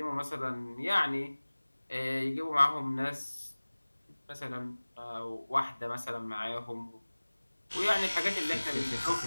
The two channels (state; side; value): inverted; both; correlation -1.00